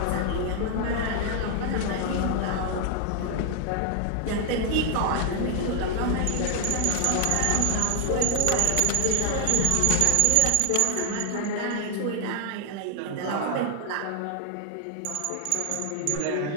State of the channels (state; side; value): different; both; correlation 0.00